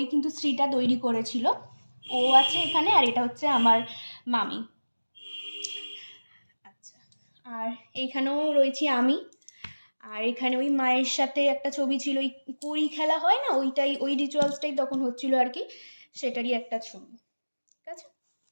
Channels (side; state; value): both; inverted; correlation -1.00